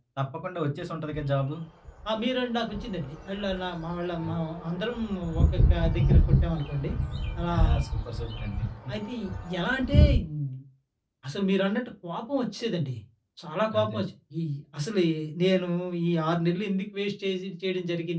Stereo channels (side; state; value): both; identical; correlation 1.00